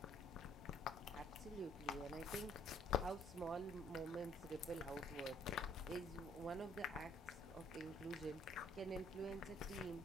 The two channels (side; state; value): both; normal; correlation 0.62